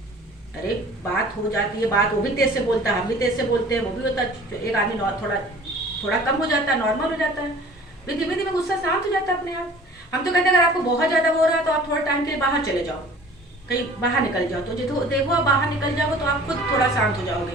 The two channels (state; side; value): normal; both; correlation 0.47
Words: अरे बात हो जाती है, बात वो भी तेज से बोलता है, हम भी तेज से बोलते हैं, वो भी होता है। एक आदमी थोड़ा कम हो जाता है, नॉर्मल हो जाता है, फिर धीमे धीमे गुस्सा शांत हो जाता है अपने आप। हम तो कहते हैं अगर आपको बहुत ज़्यादा हो रहा है तो आप थोड़ा टाइम के लिए बाहर चले जाओ, कहीं बाहर निकल जाओ। तो देखो आप बाहर निकल जाओगे तो आप खुद थोड़ा शांत हो